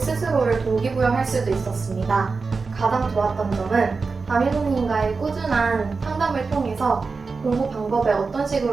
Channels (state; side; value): quieter; left; 4.4 dB